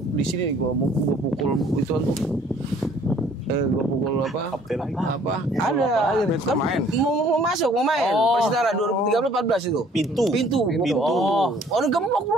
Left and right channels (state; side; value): normal; both; correlation 0.57